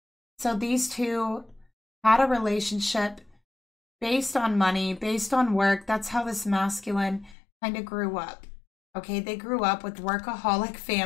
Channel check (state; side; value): drops out; right; at 7.4 s